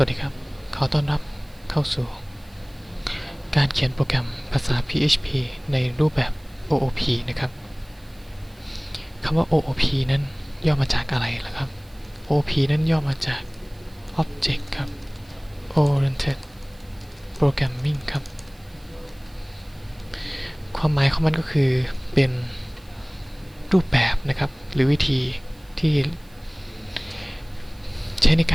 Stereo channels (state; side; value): noise; right; hiss, 29 dB below the sound